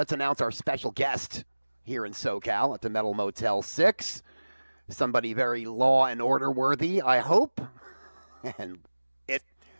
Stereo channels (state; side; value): inverted; both; correlation -1.00